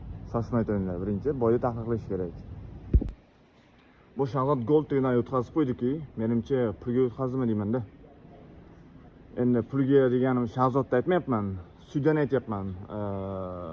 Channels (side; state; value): both; identical; correlation 1.00